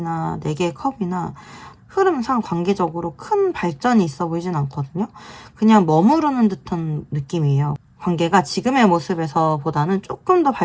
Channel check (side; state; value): both; identical; correlation 1.00